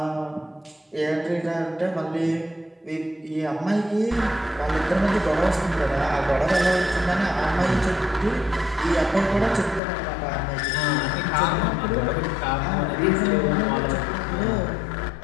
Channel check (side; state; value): right; drops out; at 9.8 s